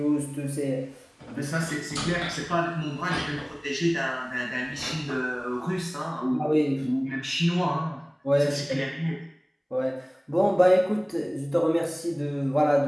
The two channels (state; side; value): identical; both; correlation 1.00